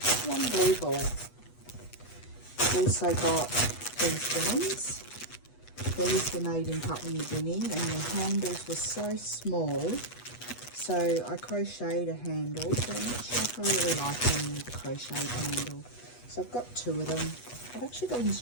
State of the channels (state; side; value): late; right; 8.2 ms